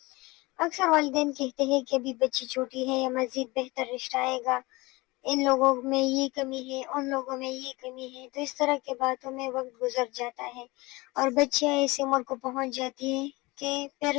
اکثر والدین کہتے ہیں کہ ابھی بچی چھوٹی ہے یا مزید بہتر رشتہ آئے گا، ان لوگوں میں یہ کمی ہے، ان لوگوں میں یہ کمی ہے، تو اس طرح کی باتوں میں وقت گزر جاتا ہے اور بچیاں ایسی عمر کو پہنچ جاتی ہیں کہ پھر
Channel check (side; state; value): right; quieter; 22.9 dB